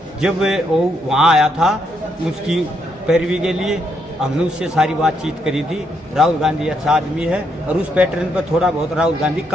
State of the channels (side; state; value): both; normal; correlation 0.76